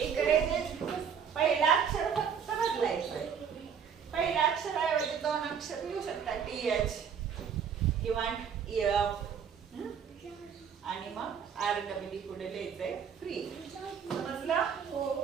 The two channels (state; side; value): quieter; left; 7.2 dB